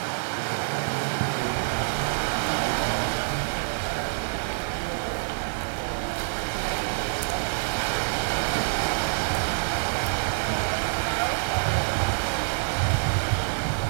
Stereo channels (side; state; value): left; silent; digital silence